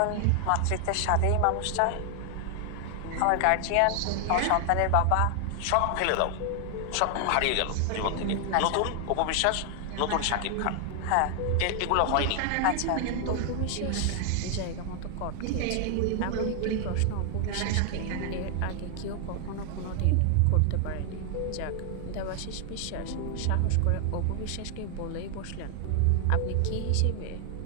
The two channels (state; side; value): different; both; correlation 0.00